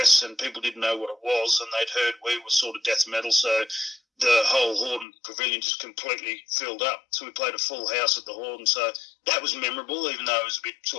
and people didn't know what it was, and they'd heard we were sort of death metal, so the whole Horden Pavilion just completely filled up. So we played a full house at the Horden. So that was memorable, even though it was a bit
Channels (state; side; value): drops out; right; at 5.1 s